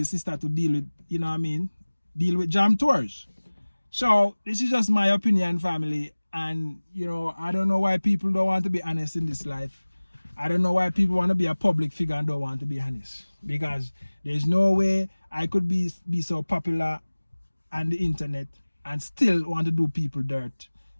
sister to deal with, you know what I mean, deal with Jam Tours. So this is just my opinion, family. And I don't know why people don't want to be honest in this life. I don't know why people want to be a public figure and don't want to be honest. Because there's no way I could be so popular on the internet and still want to do people dirt,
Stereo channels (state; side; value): inverted; both; correlation -1.00